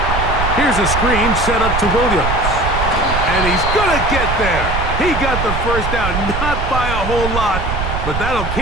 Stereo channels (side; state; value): right; noise; rumble, 3 dB below the sound